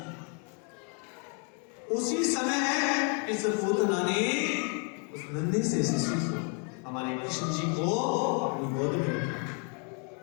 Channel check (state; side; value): quieter; right; 38.4 dB